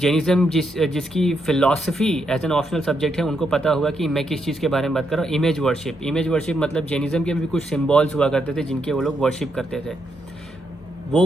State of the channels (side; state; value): both; normal; correlation 0.79